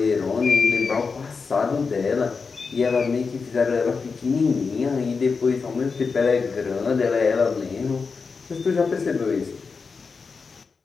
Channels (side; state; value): right; quieter; 4.9 dB